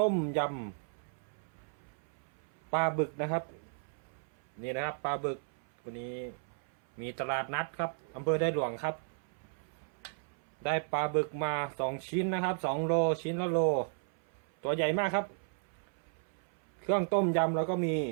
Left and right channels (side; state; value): left; silent; 55 dB below the other